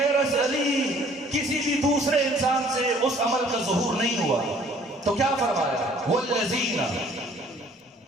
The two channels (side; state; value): both; normal; correlation 0.57